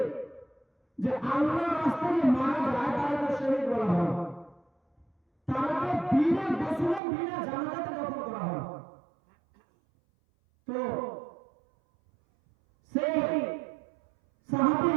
যে আল্লাহর রাস্তায় যে মারা যায় তাকে শহীদ বলা হয়, তাকে বিনা গোসলে বিনা জানাজাতে দফন করা হয়। তো সেই সাহাবী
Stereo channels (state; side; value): drops out; left; at 7.0 s